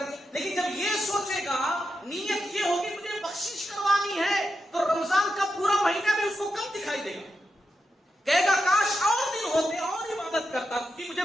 دیا۔ لیکن جب یہ سوچے گا، نیت یہ ہوگی مجھے بخشش کروانی ہے، تو رمضان کا پورا مہینہ بھی اس کو کم دکھائی دے گا، کہے گا کاش اور دن ہوتے اور عبادت کرتا، کیونکہ مجھے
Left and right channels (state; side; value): normal; both; correlation 0.87